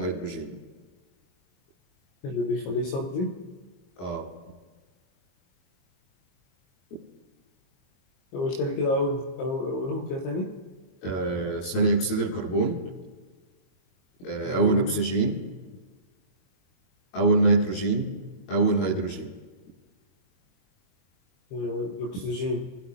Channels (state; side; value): late; right; 22 ms